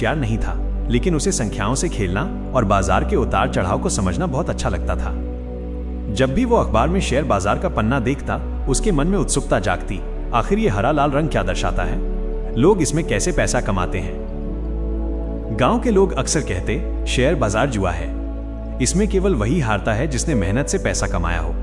नहीं था, लेकिन उसे संख्याओं से खेलना और बाजार के उतार चढ़ाव को समझना बहुत अच्छा लगता था। जब भी वो अखबार में शेयर बाजार का पन्ना देखता, उसके मन में उत्सुकता जागती। आखिर ये हरा लाल रंग क्या दर्शाता है? लोग इसमें कैसे पैसा कमाते हैं? गांव के लोग अक्सर कहते, शेयर बाजार जुआ है, इसमें केवल वही हारता है जिसने मेहनत से पैसा कमाया हो।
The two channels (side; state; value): both; identical; correlation 1.00